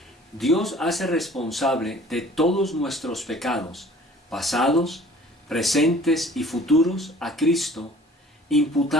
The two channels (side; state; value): both; normal; correlation 0.50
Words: Dios hace responsable de todos nuestros pecados, pasados, presentes y futuros, a Cristo,